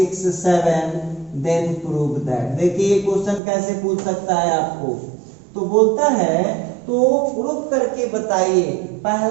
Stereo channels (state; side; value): drops out; left; at 3.4 s